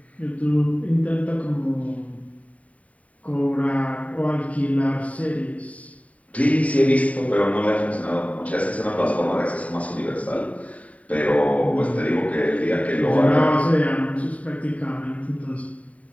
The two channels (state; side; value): late; right; 0.068 ms